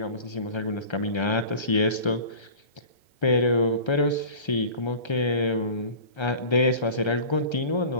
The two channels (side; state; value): right; late; 1.3 ms